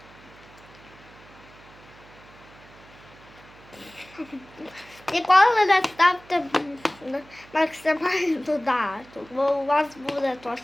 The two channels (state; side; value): noise; right; hum, 23 dB below the sound